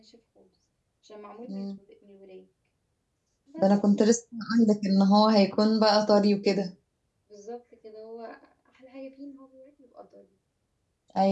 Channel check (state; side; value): identical; both; correlation 1.00